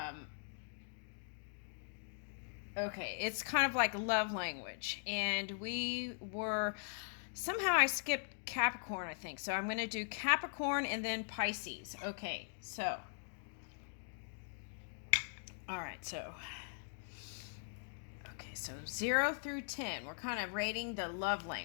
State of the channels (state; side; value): silent; right; digital silence